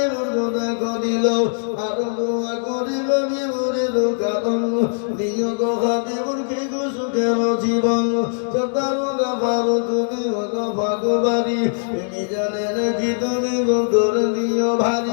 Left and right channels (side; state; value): right; silent; digital silence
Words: দেখো দিল। আরো দোয়া করি হাবিবুরের কারণ, দিও গো হাবিবুর কি গো সুখের জীবন, তারও গাফারো তুমি গো ভাগবাড়ি, তুমি জানেন কি তুমি গো করে দিও